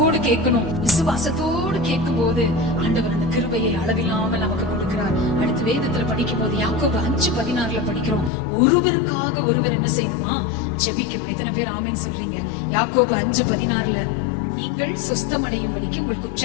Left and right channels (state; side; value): drops out; right; at 8.3 s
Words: கேட்கணும். விசுவாசத்தோடு கேட்கும் போது ஆண்டவர் அந்த கிருபையை அளவில்லாமல் நமக்கு கொடுக்கிறார். அடுத்து வேதத்துல படிக்கும் போது யாக்கோபு 5:16 படிக்கிறோம். ஒருவருக்காக ஒருவர் என்ன செய்யணுமா? ஜெபிக்கணும். எத்தனை பேர் ஆமென் சொல்றீங்க? யாக்கோபு 5:16 நீங்கள் சொஸ்தமடையும்படிக்கு உங்கள்